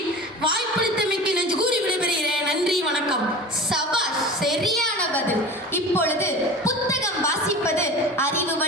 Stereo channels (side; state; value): both; normal; correlation 0.35